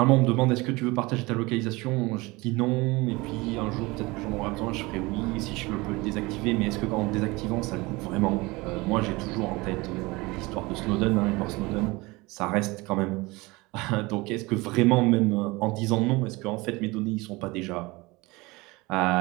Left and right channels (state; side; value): quieter; left; 23.1 dB